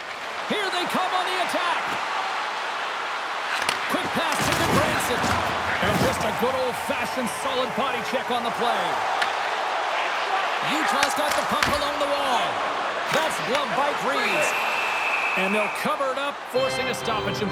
Here they come on the attack. Quick pass to Branson. And just a good old-fashioned solid body check on the play. Utah's got the puck along the wall. That's gloved by Reeves. And they'll cover it up, forcing a stoppage in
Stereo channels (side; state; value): both; identical; correlation 1.00